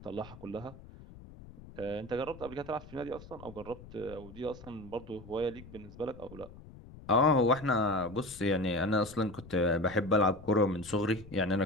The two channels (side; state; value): left; noise; rumble, 18 dB below the sound